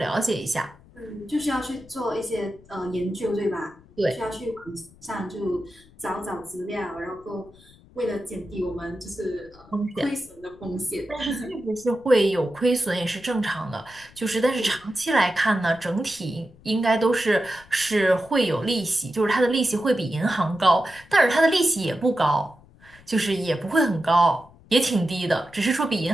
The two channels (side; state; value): left; noise; rumble, 25 dB below the sound